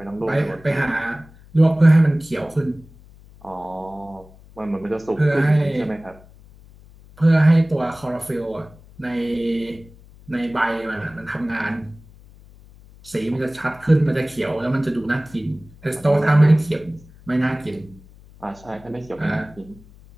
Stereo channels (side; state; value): left; noise; hum, 23 dB below the sound